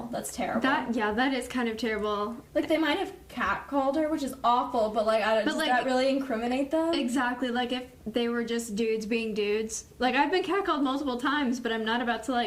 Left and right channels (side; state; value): both; identical; correlation 1.00